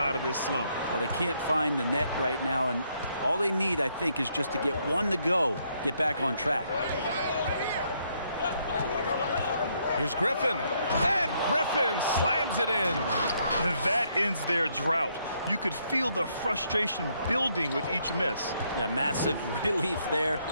of this slump. Well, they can't find the net right now, and all they need, I think, is just to get one to go, get back on track. Here's Griffin, and Griffin slams it in. And that ends their drought. You could feel the frustration building with each miss. Yeah, massive relief there,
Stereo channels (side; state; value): both; inverted; correlation -0.72